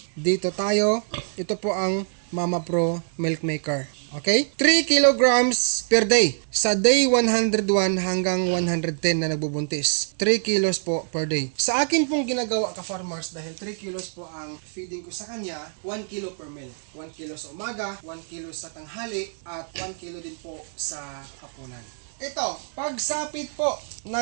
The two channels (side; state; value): left; silent; digital silence